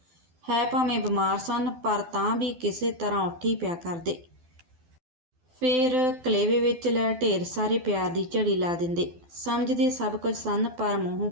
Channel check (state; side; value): late; left; 12 ms